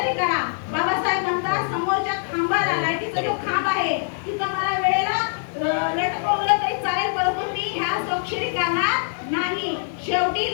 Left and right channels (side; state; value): right; silent; digital silence